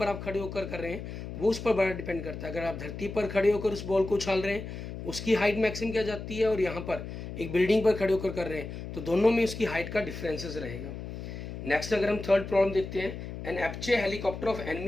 आप खड़े होकर कर रहे हैं वो उस पर बड़ा डिपेंड करता है। अगर आप धरती पर खड़े होकर उस बॉल को उछाल रहे हैं उसकी हाइट मैक्सिमम क्या जाती है, और यहाँ पर एक बिल्डिंग पर खड़े होकर कर रहे हैं तो दोनों में उसकी हाइट का डिफरेंसेस रहेगा। नेक्स्ट अगर हम थर्ड प्रॉब्लम देखते हैं, an Apache helicopter of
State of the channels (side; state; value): left; noise; hum, 9 dB below the sound